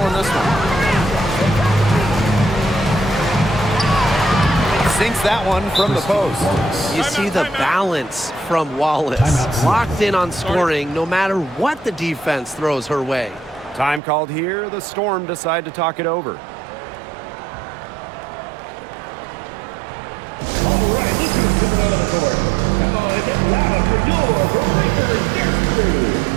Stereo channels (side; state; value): left; drops out; at 14.0 s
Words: in this one. Sinks that one from the post. You see the balance from Wallace. Locked in on scoring no matter what the defense throws her way. Time called here. The Storm decide to talk it over. All right, let's go to the court. Come on, it's loud for your Raptors Yesterday.